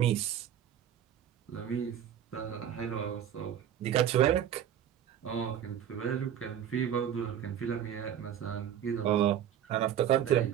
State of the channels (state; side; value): quieter; left; 10.0 dB